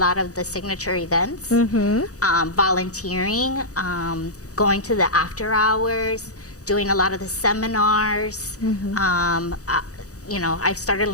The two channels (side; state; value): right; late; 0.66 ms